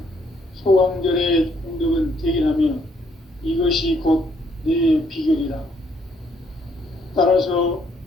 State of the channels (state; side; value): normal; both; correlation 0.69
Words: 소강절의 공덕은 대견하며 이것이 곧 내 비결이라. 따라서